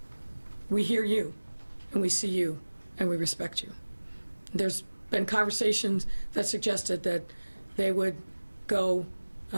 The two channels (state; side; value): inverted; both; correlation -1.00